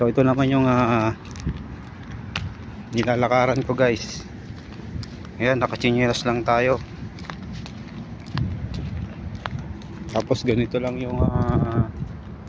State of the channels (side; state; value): both; identical; correlation 1.00